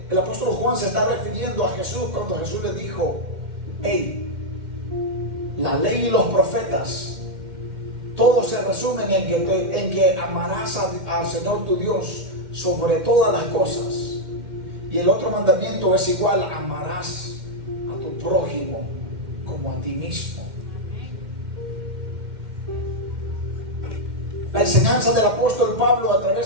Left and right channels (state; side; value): late; left; 2.1 ms